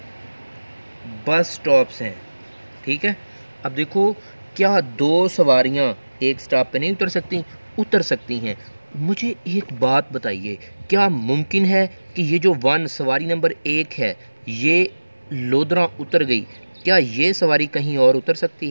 बस स्टॉप्स हैं। ठीक है, अब देखो क्या 2 सवारियां एक स्टॉप पे नहीं उतर सकती? उतर सकती हैं। मुझे एक बात बताइए, क्या मुमकिन है कि ये जो सवारी नंबर 1 है ये लोधरा उतर गई, क्या ये सवारी कहीं और उतर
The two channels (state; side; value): inverted; both; correlation -1.00